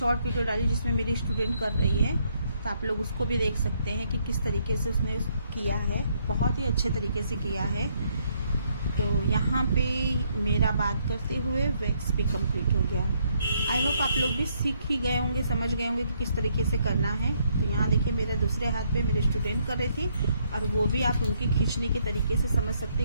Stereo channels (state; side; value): inverted; both; correlation -0.72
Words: वीडियो डाली जिसमें मेरी स्टूडेंट कर रही है, तो आप लोग उसको भी देख सकते हैं कि किस तरीके से उसने किया है। बहुत ही अच्छे तरीके से किया है। तो यहाँ पे मेरा बात करते हुए वैक्स भी कंप्लीट हो गया। आई होप आप लोग भी सीख ही गए होंगे, समझ गए होंगे कि किस तरीके से करना है। तो यहाँ देखिए मेरे दूसरे हाथ पे मेरे स्टूडेंट कर रही थी और वो भी आप उनकी खींचने के तरीके से समझ सकते